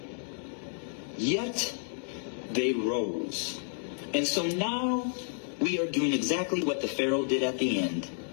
Yet they rose. And so now we are doing exactly what the Pharaoh did at the end,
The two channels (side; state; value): right; silent; digital silence